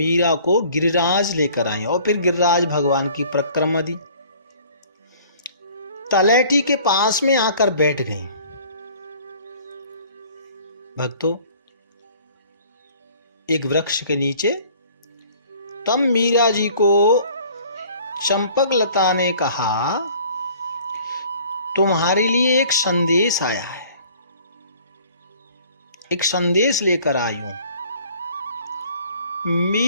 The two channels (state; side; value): inverted; both; correlation -0.52